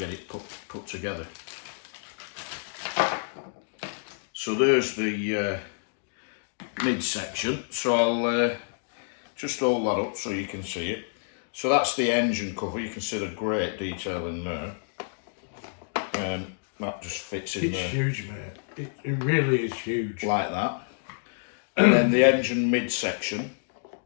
it put together. So there's the midsection. So I'll just hold that up so you can see it. So that's the engine cover. You can see the great detail in there. That just fits in there. It's huge, mate. It really is huge. Like that. And then the engine midsection,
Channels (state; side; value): silent; right; digital silence